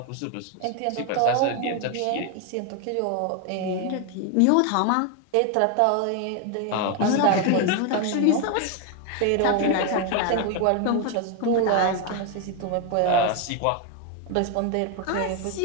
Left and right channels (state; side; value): different; both; correlation 0.01